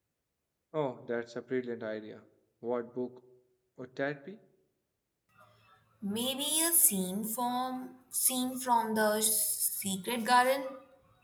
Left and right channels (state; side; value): identical; both; correlation 1.00